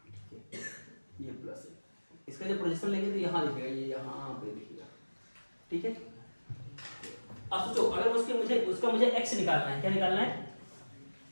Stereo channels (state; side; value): inverted; both; correlation -1.00